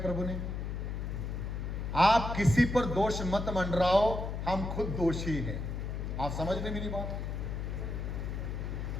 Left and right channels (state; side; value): noise; left; hum, 4 dB below the sound